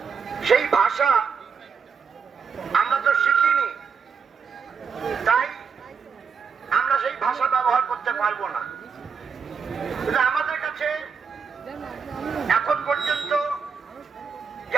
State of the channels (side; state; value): left; quieter; 6.1 dB